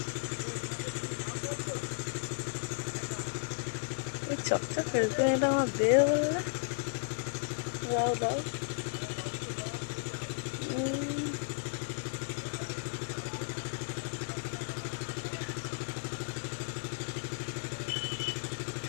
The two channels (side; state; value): right; silent; digital silence